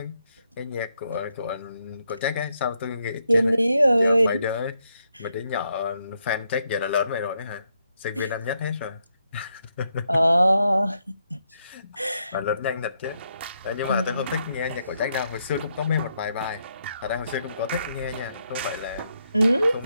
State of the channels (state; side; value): inverted; both; correlation -0.79